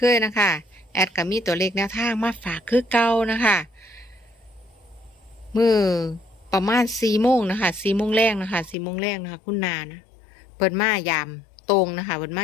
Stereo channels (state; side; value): drops out; right; at 8.8 s